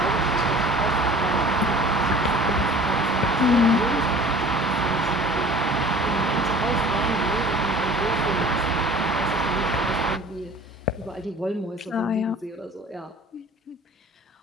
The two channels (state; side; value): normal; both; correlation 0.45